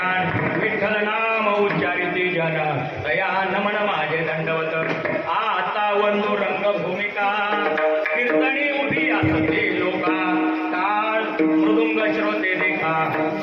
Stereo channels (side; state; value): both; identical; correlation 1.00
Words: विठ्ठल नाम उच्चारिती जन दया नमन माझे दंडवत आता बंधू रंगभूमिका कीर्तनी उभी असते लोका टाळ मृदुंग श्रोते देखा